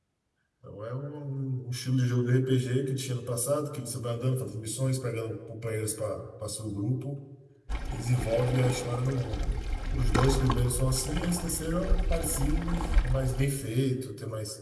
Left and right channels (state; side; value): identical; both; correlation 1.00